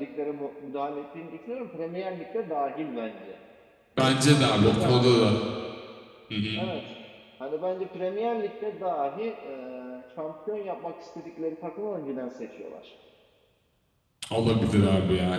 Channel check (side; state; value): both; identical; correlation 1.00